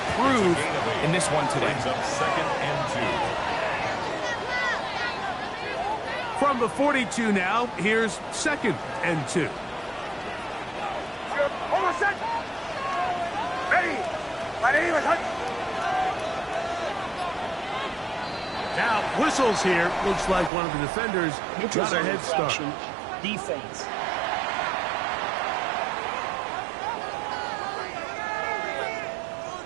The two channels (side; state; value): left; drops out; at 20.5 s